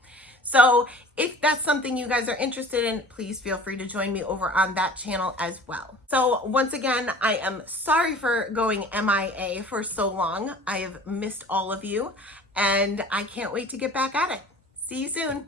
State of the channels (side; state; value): both; normal; correlation 0.45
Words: So if that's something you guys are interested in, please feel free to join me over on that channel as well. So once again, I am sorry for going MIA for so long. I have missed all of you, and I can't wait to get back at it. See you soon.